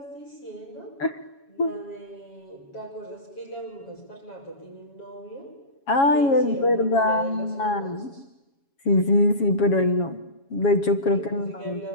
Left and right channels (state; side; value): late; right; 7.2 ms